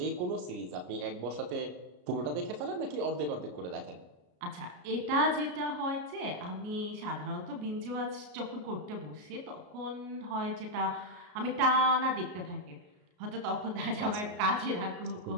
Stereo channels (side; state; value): left; late; 34 ms